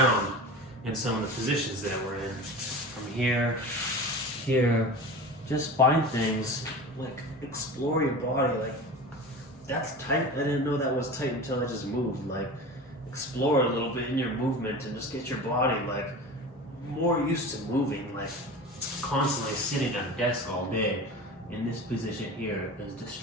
in some of the positions that we're in. From here, here, just find things, like explore your body. Like, that's tight, I didn't know that was tight until I just moved. Like, explore a little bit in your movement and just get your body like more used to moving. Like, constantly sitting at a desk all day in this position here is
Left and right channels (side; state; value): both; normal; correlation 0.33